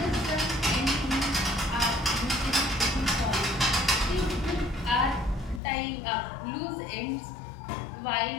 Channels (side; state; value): right; drops out; at 5.6 s